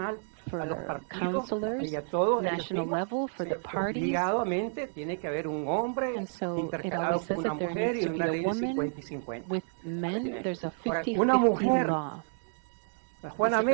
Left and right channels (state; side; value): silent; left; digital silence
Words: for councilors, national level, for the parties. And so it always says that there needs to be a woman with men. There's a 50-50 law.